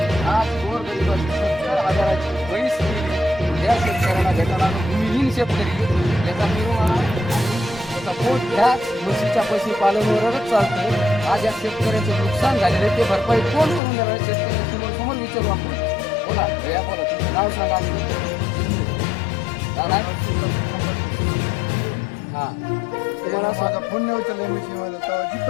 आज गोरगरिबाची 70,000ची पैस केली त्या शेतकऱ्याला भेटायला भूमिहीन शेतकरी याचा निर्वाह त्याचा पोट ह्याच म्हशीच्या पशुपालनावरच चालतं. आज या शेतकऱ्याचं नुकसान झालेलं ते भरपाई कोण करून देणार शेतकऱ्यांसमोर समोर विचारू आपण. बोला भैया बोला तुमचं नाव सांगा हा तुम्हाला माझा फोन नाही उचलला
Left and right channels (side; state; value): right; drops out; at 13.8 s